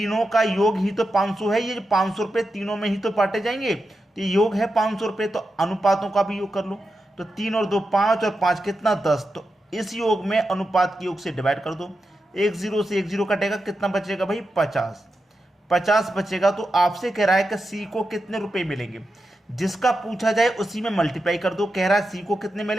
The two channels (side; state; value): both; normal; correlation 0.89